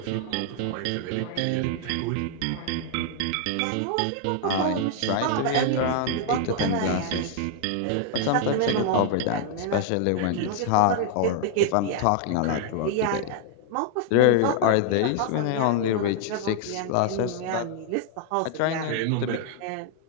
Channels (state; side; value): different; both; correlation 0.00